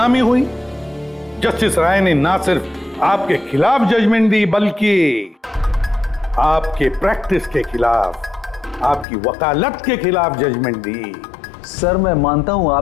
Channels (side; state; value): right; drops out; at 9.1 s